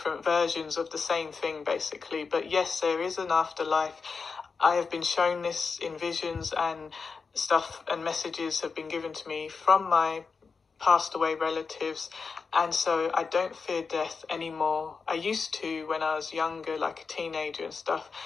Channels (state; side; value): quieter; right; 5.0 dB